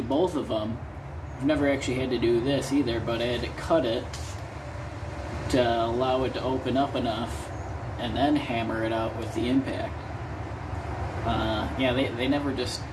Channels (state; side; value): identical; both; correlation 1.00